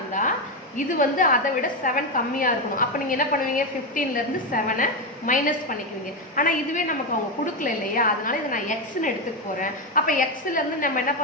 இது வந்து அதை விட 7 கம்மியாக இருக்கணும். அப்போ நீங்கள் என்ன பண்ணுவீங்க, 15லேருந்து 7 மைனஸ் பண்ணிக்குவீங்க. ஆனால் இதுவே நமக்கு அவங்க கொடுக்கல இல்லையா, அதனால இதை நான் எக்ஸ்ன்னு எடுத்துக்க போகிறேன். அப்போ எக்ஸ்லேருந்து நம்ம என்ன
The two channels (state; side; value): normal; both; correlation 0.10